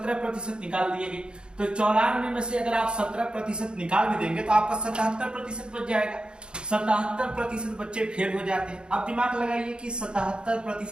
निकाल दिए गए। तो 94 में से अगर आप 17% निकाल भी देंगे तो आपका 77% बच जाएगा। 77% बच्चे फेल हो जाते हैं। अब दिमाग लगाइए कि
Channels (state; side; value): late; left; 0.051 ms